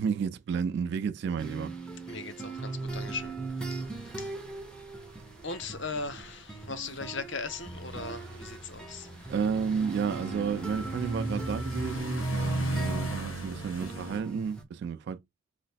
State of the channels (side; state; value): left; quieter; 3.5 dB